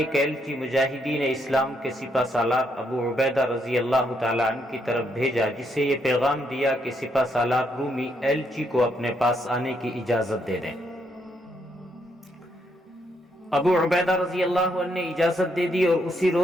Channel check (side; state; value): both; normal; correlation 0.76